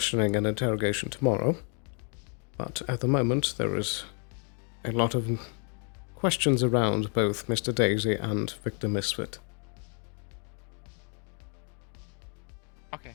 and interrogation tomorrow, but at the moment there is a lot of questions around both Mr. Daisy and Victor Misfit. Okay.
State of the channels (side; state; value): right; quieter; 39.9 dB